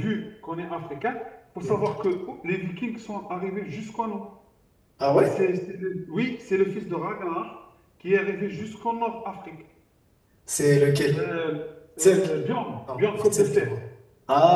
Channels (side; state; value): both; identical; correlation 1.00